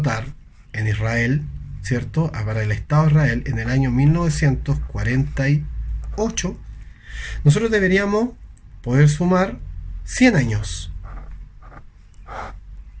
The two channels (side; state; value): both; identical; correlation 1.00